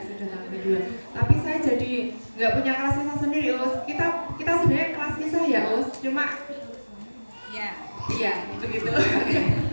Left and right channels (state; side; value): inverted; both; correlation -1.00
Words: tahun kedua. Tapi saya jadi nggak punya kelas kisah sendiri Us. Kita sebenarnya kelas kisah ya Us, cuma ya begitu.